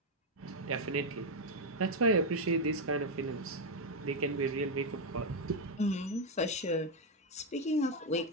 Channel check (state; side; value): normal; both; correlation 0.04